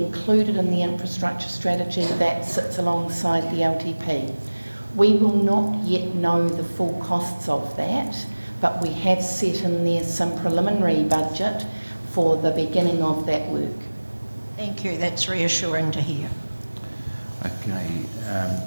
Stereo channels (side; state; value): both; inverted; correlation -1.00